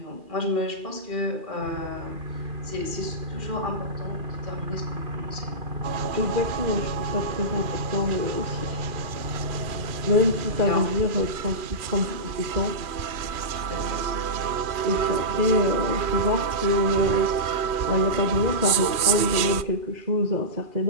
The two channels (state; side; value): late; left; 2.4 ms